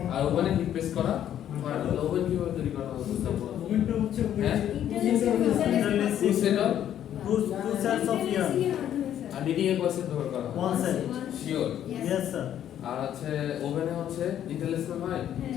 আর ওভেনে হিট প্রেস করা হয় না ওভেন কিভাবে তৈরি করা হয় বুঝতে পারবো ওভেনটা হচ্ছে হ্যাঁ? Two set of Two sets of yarn. আর নিডিং এর প্রসেস ব্যবহার করা হয় One set. Sure Yes, sir. আর হচ্ছে ওভেনে হচ্ছে ইন্টারলেসমেন্ট হয়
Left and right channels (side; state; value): right; quieter; 10.7 dB